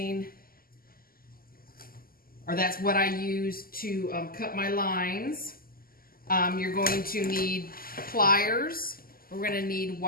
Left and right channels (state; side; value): late; right; 0.42 ms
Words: or that's what I use to cut my lines. You're going to need pliers. We're going to need